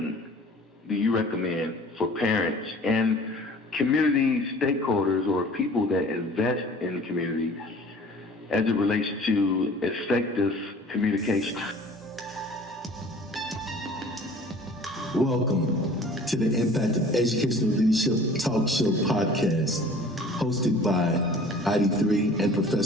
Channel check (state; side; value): normal; both; correlation 0.48